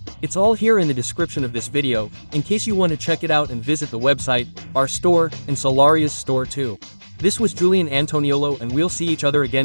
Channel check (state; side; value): inverted; both; correlation -1.00